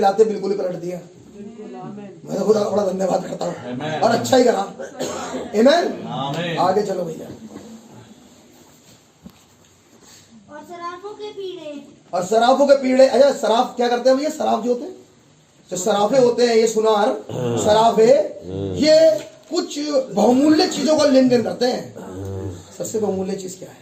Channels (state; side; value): identical; both; correlation 1.00